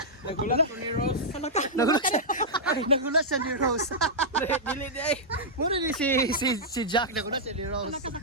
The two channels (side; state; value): both; normal; correlation -0.09